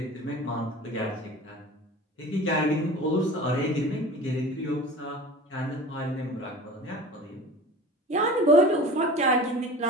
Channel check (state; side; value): normal; both; correlation 0.38